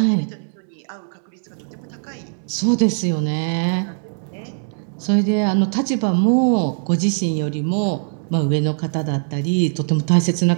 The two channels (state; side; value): silent; left; 65 dB below the other